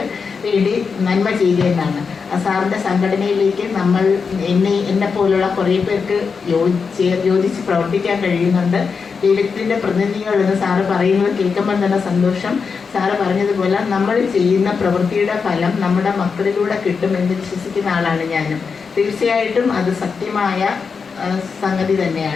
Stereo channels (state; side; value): quieter; right; 5.4 dB